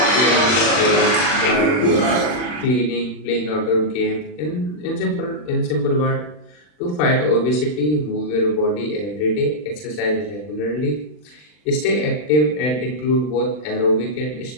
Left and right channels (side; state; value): right; late; 40 ms